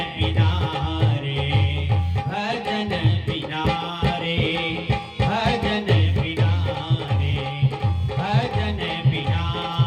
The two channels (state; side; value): identical; both; correlation 1.00